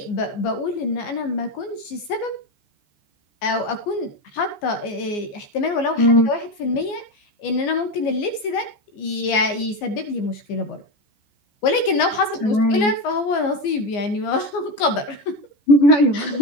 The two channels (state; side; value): late; right; 14 ms